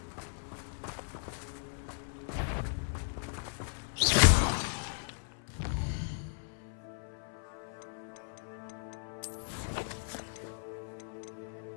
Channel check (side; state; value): right; silent; 54 dB below the other